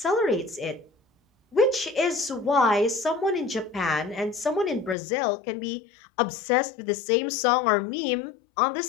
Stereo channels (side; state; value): right; drops out; at 5.0 s